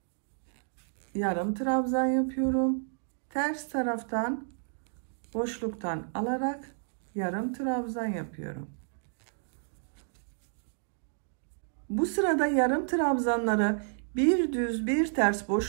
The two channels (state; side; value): silent; left; digital silence